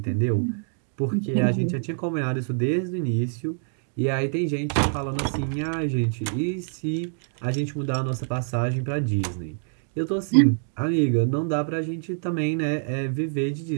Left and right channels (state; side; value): silent; left; digital silence